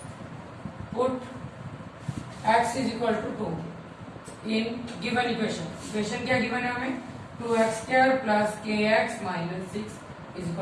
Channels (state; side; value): identical; both; correlation 1.00